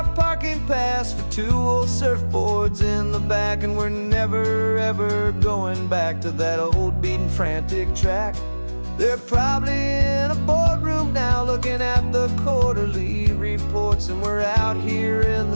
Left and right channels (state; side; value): inverted; both; correlation -1.00